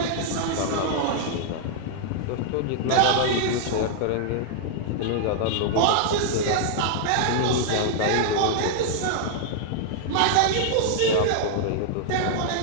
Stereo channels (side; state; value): both; different; correlation -0.01